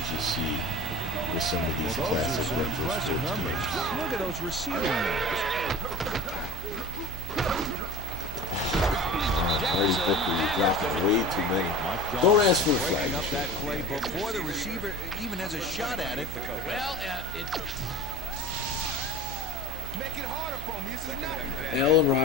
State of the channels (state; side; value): noise; right; hum, 12 dB below the sound